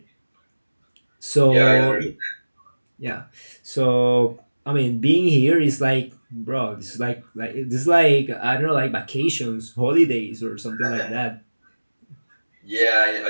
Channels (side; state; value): both; inverted; correlation -1.00